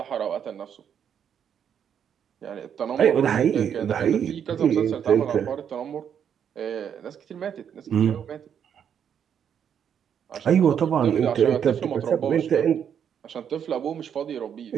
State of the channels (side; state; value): left; quieter; 8.3 dB